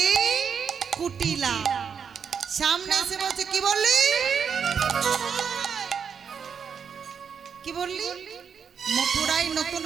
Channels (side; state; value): left; quieter; 6.8 dB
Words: কুটিলা। সামনে এসে বলছে, কি বললি? কি বললি? মথুরায় নতুন